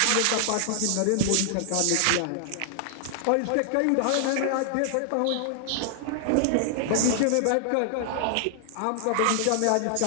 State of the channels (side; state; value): both; different; correlation -0.01